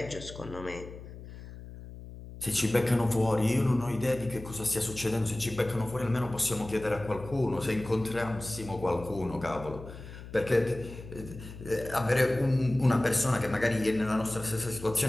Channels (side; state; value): left; noise; hum, 14 dB below the sound